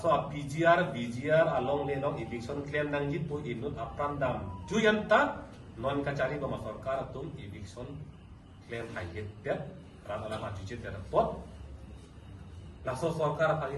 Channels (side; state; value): both; identical; correlation 1.00